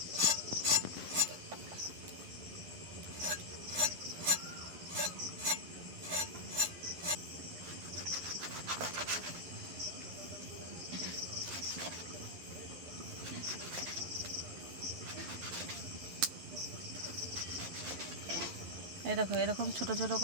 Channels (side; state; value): left; late; 11 ms